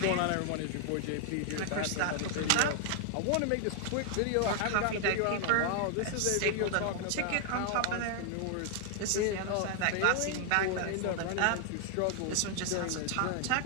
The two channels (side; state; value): both; different; correlation 0.00